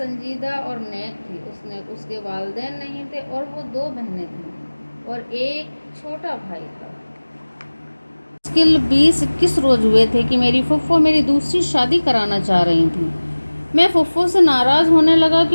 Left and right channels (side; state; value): both; inverted; correlation -1.00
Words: اور نیک تھی۔ اس کے والدین نہیں تھے اور وہ 2 بہنیں تھیں اور ایک چھوٹا بھائی تھا۔ مشکل 20-21 روز ہوئے تھے کہ میری پھپھو میری دوسری شادی کرانا چاہ رہی تھیں۔ میں پھپھو سے ناراض ہونے لگا